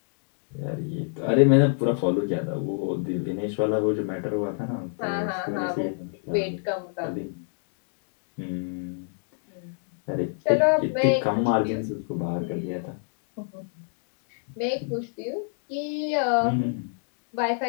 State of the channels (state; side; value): silent; right; digital silence